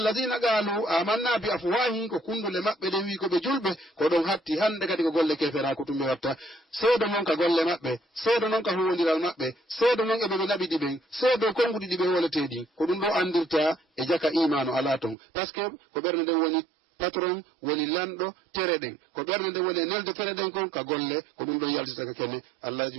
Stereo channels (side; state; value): left; drops out; at 15.2 s